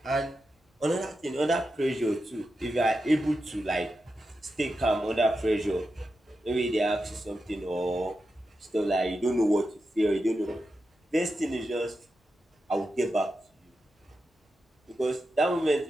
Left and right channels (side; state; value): both; normal; correlation 0.89